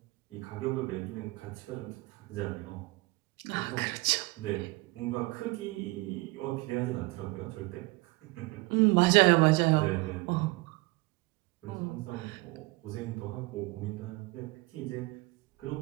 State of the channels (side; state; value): left; quieter; 23.7 dB